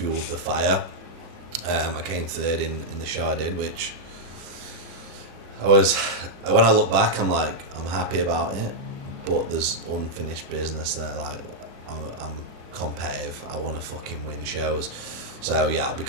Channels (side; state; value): left; late; 36 ms